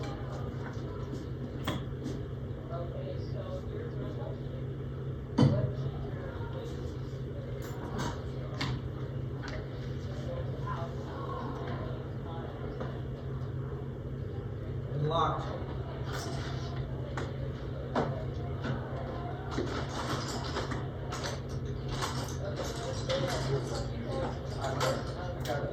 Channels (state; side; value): identical; both; correlation 1.00